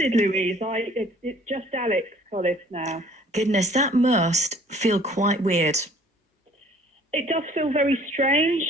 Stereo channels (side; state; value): both; normal; correlation 0.54